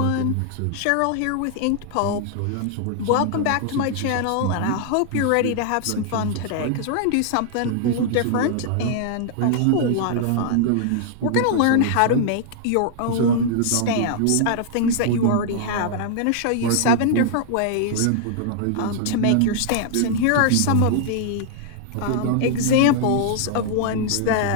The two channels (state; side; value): different; both; correlation -0.01